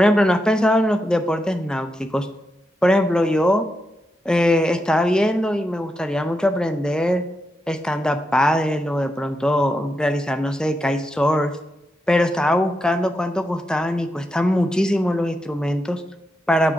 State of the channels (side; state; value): both; normal; correlation 0.86